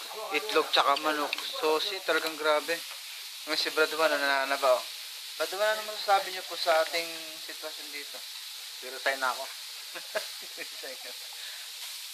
itlog tsaka manok. Sosi, talagang grabe. Ngayon si Brad Juan, nananaba oh. Brad Juan, ano masasabi niyo po sa ating sitwasyon dito? resign na ako.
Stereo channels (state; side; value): identical; both; correlation 1.00